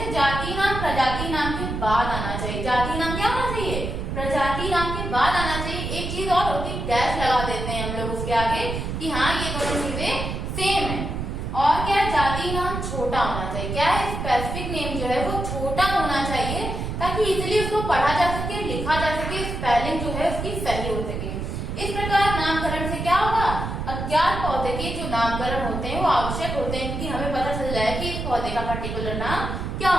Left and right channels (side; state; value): right; noise; rumble, 4 dB below the sound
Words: जाति नाम प्रजाति नाम के बाद आना चाहिए। जाति नाम क्या होना चाहिए, प्रजाति नाम के बाद आना चाहिए। एक चीज और होती है, डैश लगा देते हैं हम लोग उसके आगे कि हाँ ये दोनों चीजें सेम है। और क्या है, जाति नाम छोटा होना चाहिए। क्या है, स्पेसिफिक नेम जो है वो छोटा होना चाहिए ताकि इजीली उसको पढ़ा जा सके, लिखा जा सके, स्पेलिंग जो है उसकी सही हो सके। इस प्रकार नामकरण से क्या होगा, अज्ञात पौधे के जो नामकरण होते हैं वो आवश्यक होते हैं क्योंकि हमें पता चल जाए कि इस पौधे का पर्टिकुलर नाम क्या